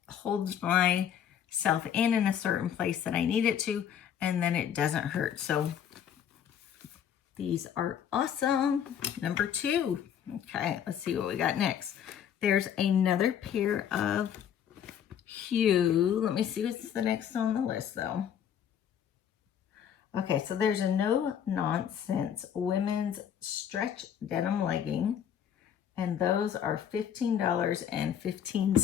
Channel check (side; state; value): right; quieter; 9.0 dB